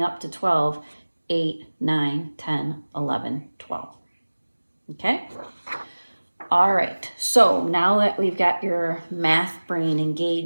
up to 12, 8, 9, 10, 11, 12. Okay? All right, so now that we've got your math brain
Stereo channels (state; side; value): inverted; both; correlation -1.00